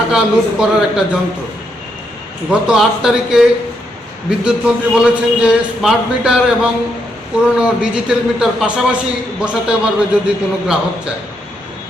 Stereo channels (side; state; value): both; normal; correlation 0.78